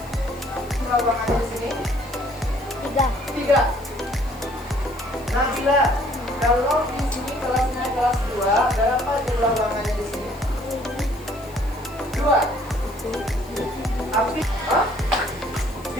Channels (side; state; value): left; noise; hiss, 24 dB below the sound